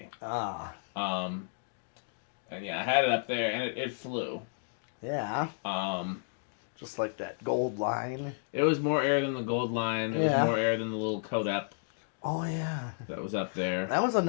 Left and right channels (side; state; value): right; silent; digital silence